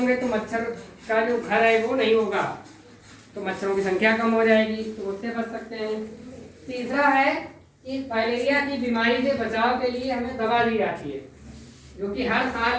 तो मच्छर का जो घर है वो नहीं होगा, तो मच्छरों की संख्या कम हो जाएगी, तो उससे बच सकते हैं। तीसरा है कि फाइलेरिया की बीमारी से बचाव के लिए हमें दवा दी जाती है, जो कि हर साल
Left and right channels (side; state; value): both; identical; correlation 1.00